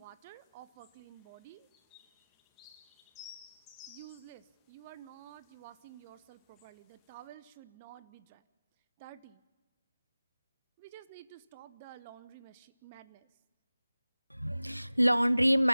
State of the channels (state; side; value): inverted; both; correlation -0.98